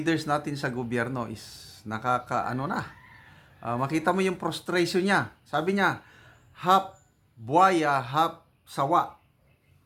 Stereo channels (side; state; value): both; identical; correlation 1.00